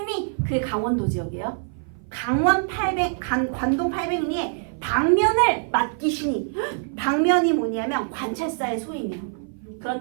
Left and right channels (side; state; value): left; silent; 57 dB below the other